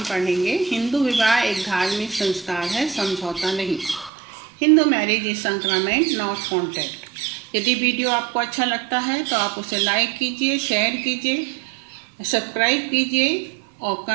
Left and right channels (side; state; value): left; drops out; at 4.1 s